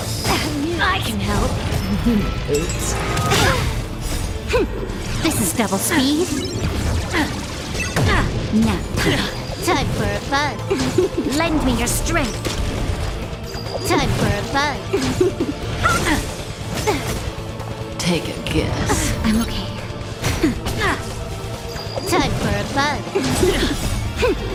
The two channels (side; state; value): both; identical; correlation 1.00